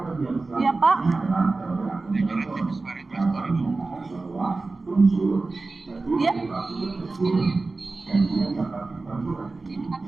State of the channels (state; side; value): quieter; left; 3.6 dB